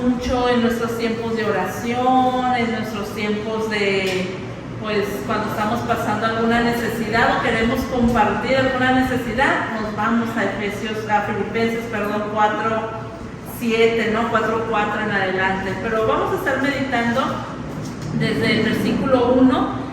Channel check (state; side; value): identical; both; correlation 1.00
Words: mucho en nuestros tiempos de oración, en nuestros tiempos de, pues, cuando estamos pasando alguna necesidad o queremos compartir alguna necesidad, nos vamos a Filipenses, 4:7, ¿no? 4:4 en adelante. Pero vamos a estar meditando desde el versículo 1